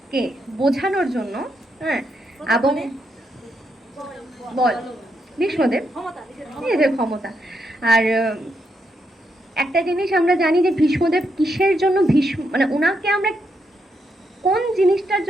বোঝানোর জন্য, হ্যাঁ, এবং বল ভীষ্মদেব নিজের ক্ষমতা। আর একটা জিনিস আমরা জানি যে ভীষ্মদেব কিসের জন্য মানে ওনাকে আমরা কোন জিনিসটার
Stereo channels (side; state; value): both; normal; correlation 0.80